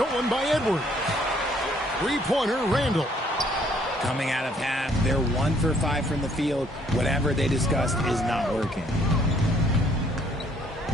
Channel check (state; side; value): normal; both; correlation 0.64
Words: by Edwards. Three-pointer, Randall. Coming out of half, they're 1 for 5 from the field. Whatever they discussed is not working.